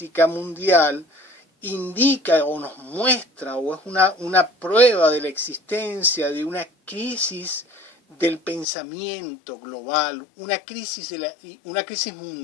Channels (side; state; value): right; drops out; at 8.7 s